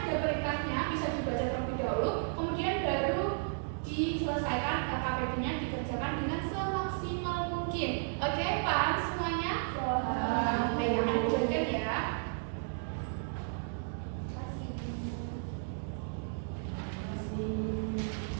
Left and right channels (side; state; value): left; silent; digital silence